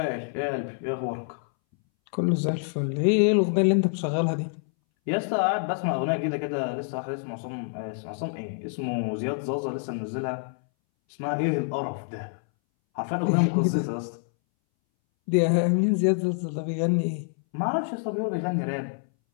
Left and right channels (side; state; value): right; silent; 60 dB below the other